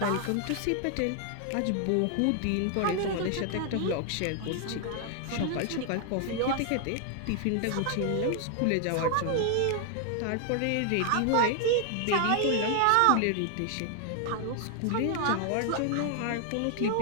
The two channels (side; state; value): both; different; correlation 0.00